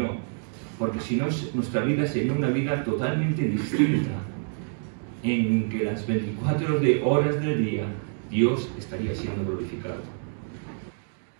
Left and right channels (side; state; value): left; silent; digital silence